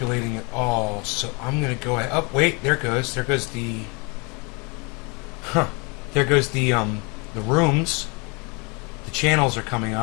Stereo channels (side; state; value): right; quieter; 30.3 dB